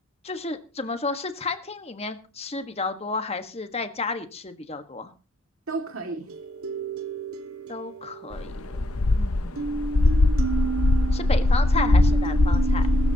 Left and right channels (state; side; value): normal; both; correlation 0.76